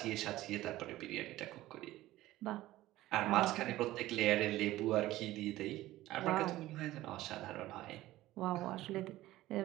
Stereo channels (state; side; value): quieter; left; 16.2 dB